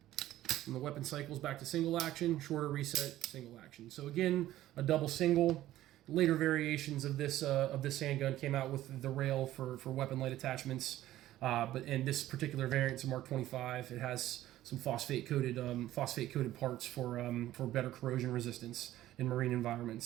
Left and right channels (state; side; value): quieter; left; 14.3 dB